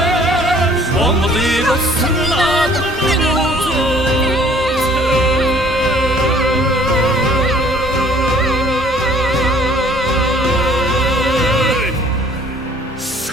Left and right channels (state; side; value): normal; both; correlation 0.56